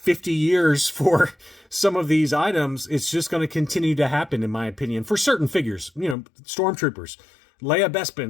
years for some of these items, it's just going to continue to happen, in my opinion, for certain figures. You know, Stormtroopers, Leia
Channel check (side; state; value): right; drops out; at 6.2 s